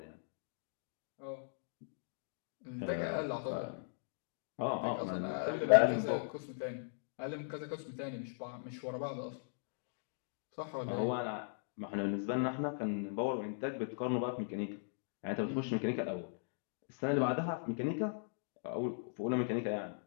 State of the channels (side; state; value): right; silent; digital silence